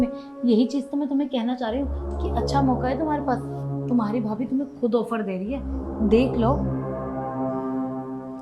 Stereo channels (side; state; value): both; identical; correlation 1.00